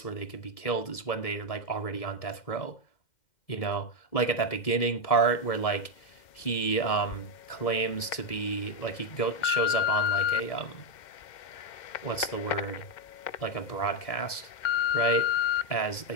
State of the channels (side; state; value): right; late; 1.7 ms